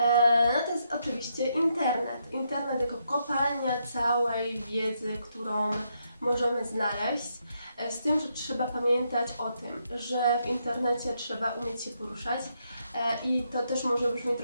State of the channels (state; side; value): inverted; both; correlation -0.79